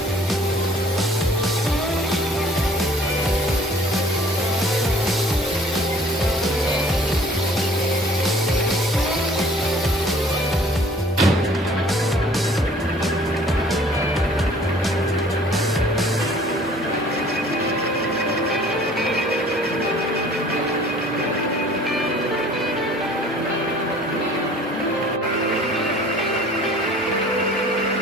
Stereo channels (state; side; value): normal; both; correlation 0.52